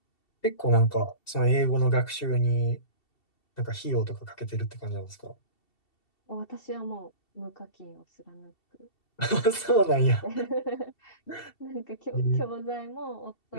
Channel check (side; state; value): right; late; 2.7 ms